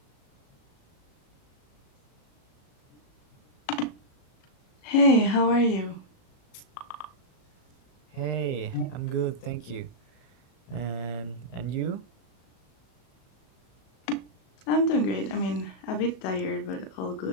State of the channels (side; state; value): right; late; 37 ms